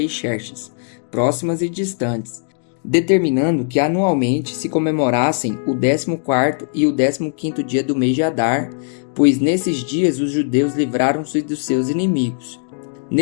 Xerxes, próximas e distantes, determinando que anualmente se comemorassem o 14º e o 15º dia do mês de Adar, pois nesses dias os judeus livraram-se dos seus inimigos.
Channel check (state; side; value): silent; right; digital silence